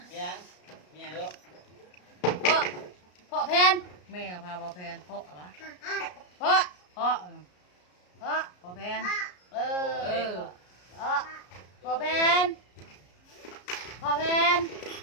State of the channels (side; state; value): right; late; 33 ms